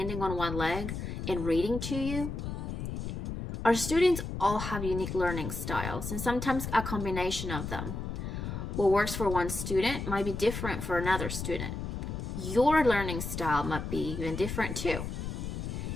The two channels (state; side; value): noise; left; rumble, 5 dB below the sound